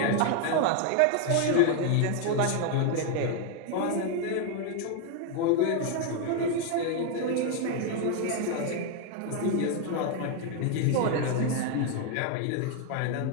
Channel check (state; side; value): different; both; correlation 0.01